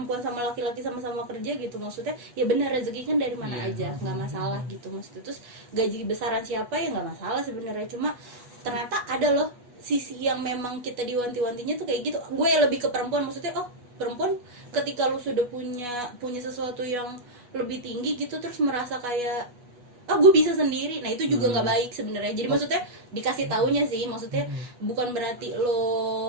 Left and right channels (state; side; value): late; left; 8.2 ms